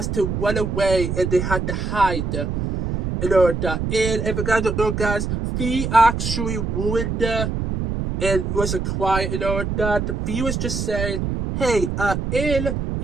to run away and they had to hide and all of that. And if you guys don't know, guys, Fee actually ruined and was quiet and all of that. Fee was just saying, hey,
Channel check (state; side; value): noise; right; rumble, 2 dB below the sound